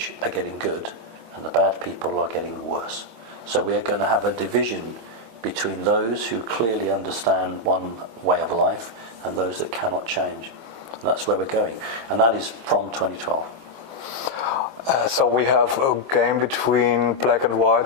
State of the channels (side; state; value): left; late; 24 ms